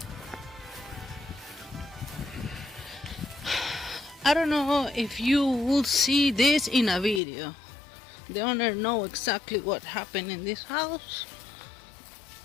I don't know if you will see this in a video. The owner know exactly what happened in this house.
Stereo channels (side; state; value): right; drops out; at 7.2 s